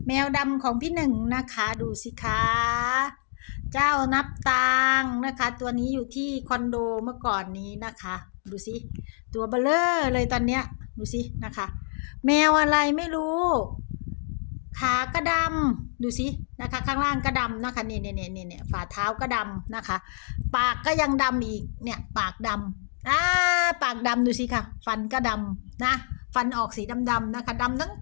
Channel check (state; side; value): silent; right; 60 dB below the other